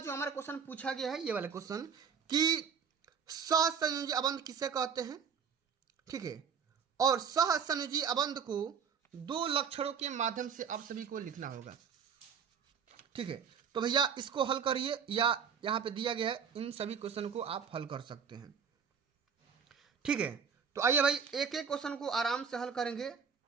हमारा क्वेश्चन पूछा गया है ये वाला क्वेश्चन कि सहसंयोजी अबंध किसे कहते हैं। ठीक है, और सहसंयोजी अबंध को दो लक्षणों के माध्यम से आप सभी को लिखना होगा। ठीक है, तो भैया इसको हल करिए या यहाँ पे दिया गया है, इन सभी क्वेश्चन को आप हल कर सकते हैं। ठीक है, तो आइए भाई एक एक क्वेश्चन को आराम से हल करेंगे,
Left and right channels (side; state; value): left; quieter; 6.7 dB